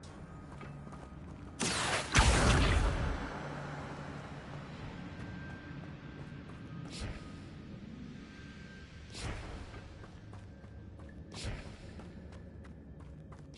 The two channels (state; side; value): identical; both; correlation 1.00